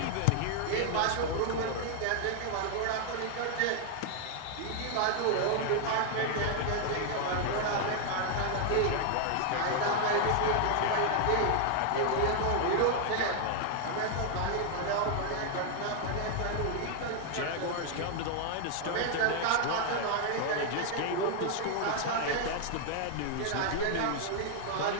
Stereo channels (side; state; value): both; different; correlation 0.00